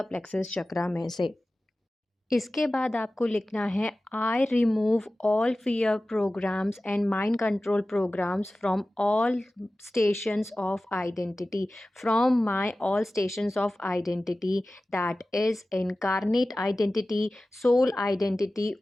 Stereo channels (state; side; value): normal; both; correlation 0.96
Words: प्लेक्सस चक्रा में से। इसके बाद आपको लिखना है, I remove all fear programs and mind control programmes from all stations of identity, from my all stations of identity, that is incarnate identity, soul identity,